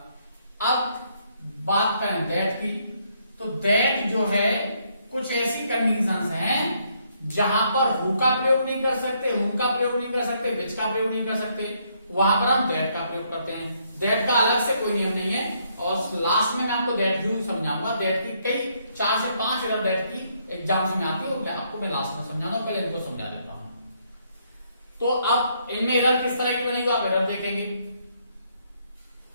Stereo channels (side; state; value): both; inverted; correlation -0.72